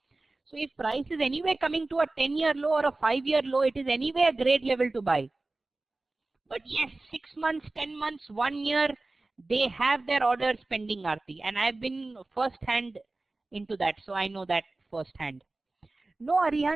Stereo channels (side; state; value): left; quieter; 3.1 dB